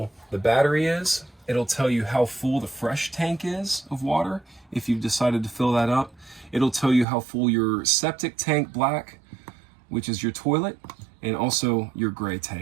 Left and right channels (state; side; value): drops out; left; at 7.1 s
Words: the battery is. It'll tell you how full the fresh tank is of water if you've decided to fill that up. It'll tell you how full your septic tank black, which is your toilet, and also your gray